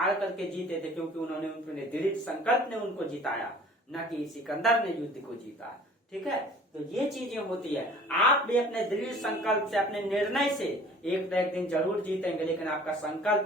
करके जीते थे क्योंकि उन्होंने दृढ़ संकल्प ने उनको जिताया, न कि सिकंदर ने युद्ध को जीता। ठीक है, तो ये चीजें होती है। आप भी अपने दृढ़ संकल्प से, अपने निर्णय से एक न एक दिन जरूर जीतेंगे, लेकिन आपका संकल्प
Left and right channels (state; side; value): normal; both; correlation 0.49